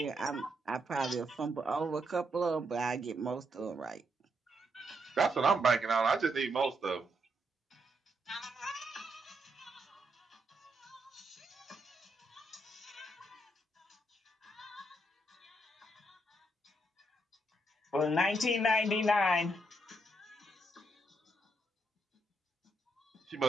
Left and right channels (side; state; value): both; normal; correlation 0.79